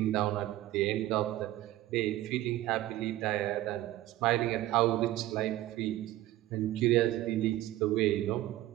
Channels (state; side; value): quieter; left; 15.3 dB